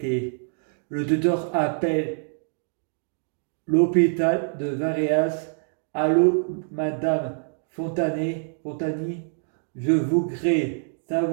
Le docteur appelle l'hôpital de Varéas. Allô, madame Fontani, je voudrais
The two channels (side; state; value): left; silent; 62 dB below the other